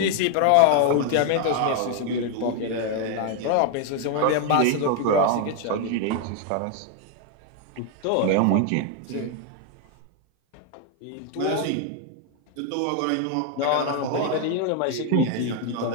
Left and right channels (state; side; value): different; both; correlation 0.01